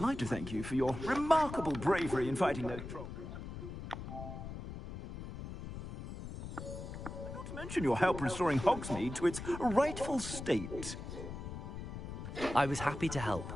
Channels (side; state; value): left; noise; rumble, 9 dB below the sound